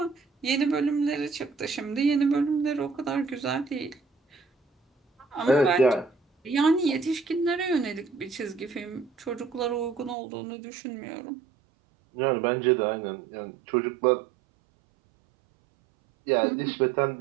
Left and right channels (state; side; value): drops out; left; at 10.2 s